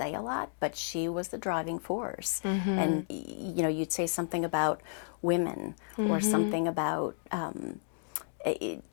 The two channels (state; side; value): silent; right; digital silence